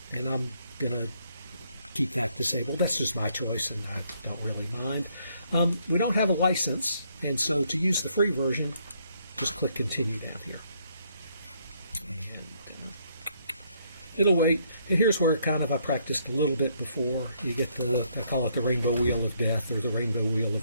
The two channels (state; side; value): inverted; both; correlation -0.70